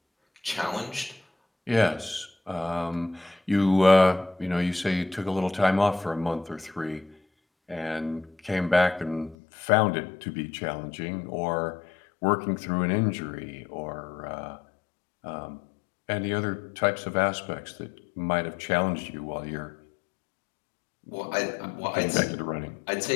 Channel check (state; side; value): drops out; right; at 9.3 s